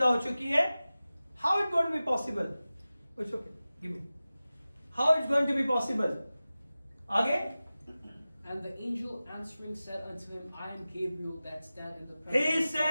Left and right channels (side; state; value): both; inverted; correlation -0.96